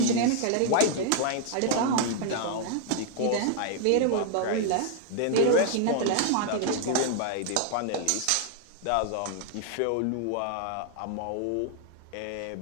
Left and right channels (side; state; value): both; different; correlation 0.00